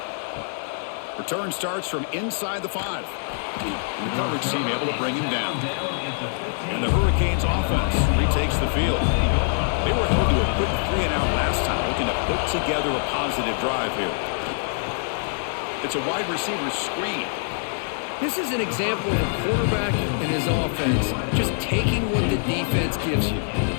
Return starts from inside the 5. And the coverage team able to bring him down. And the Hurricanes offense retakes the field. They were held to a quick 3-and-out last time, looking to put together a positive drive here. It's a wide receiver screen. This is an example of a quarterback and his offense just taking what the defense gives you.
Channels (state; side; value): silent; right; digital silence